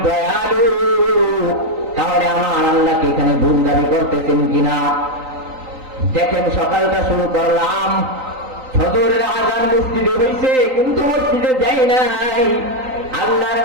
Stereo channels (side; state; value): left; late; 3.9 ms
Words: দয়ালু। তাহলে আমার আল্লাহকে এখানে ভুল দাবি করতেছেন কিনা দেখেন। সকালটা শুরু করলাম, ফজরের আযান মসজিদে হইছে কিন্তু মসজিদে যাই নাই, আল্লাহর